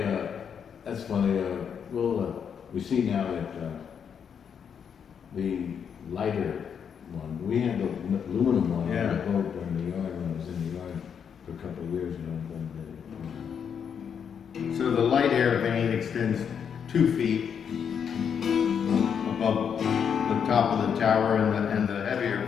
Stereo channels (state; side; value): quieter; right; 7.4 dB